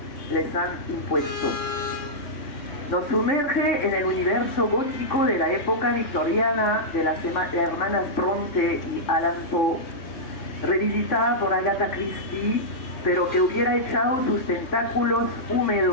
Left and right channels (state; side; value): late; right; 3.5 ms